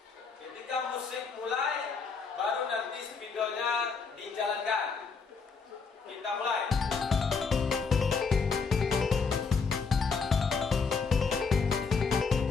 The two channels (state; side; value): quieter; right; 5.1 dB